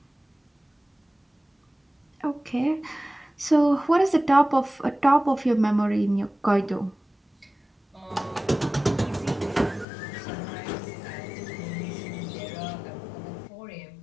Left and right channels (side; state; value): right; drops out; at 9.9 s